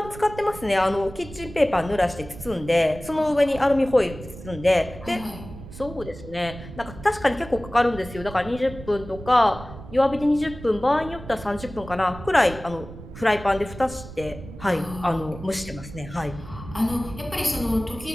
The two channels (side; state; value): right; noise; rumble, 14 dB below the sound